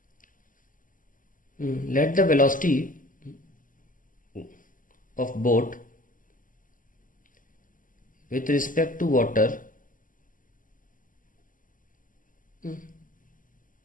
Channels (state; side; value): late; right; 0.39 ms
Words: Let the velocity of boat with respect to